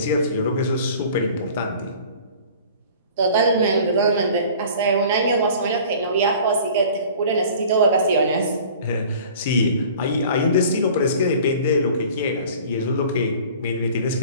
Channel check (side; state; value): both; inverted; correlation -0.46